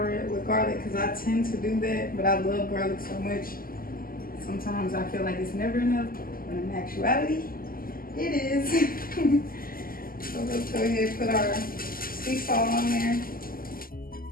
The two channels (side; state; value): right; late; 0.42 ms